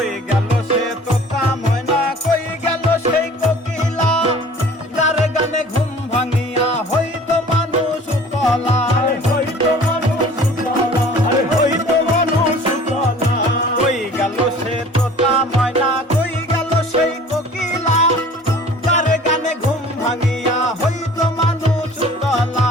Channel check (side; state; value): both; normal; correlation 0.47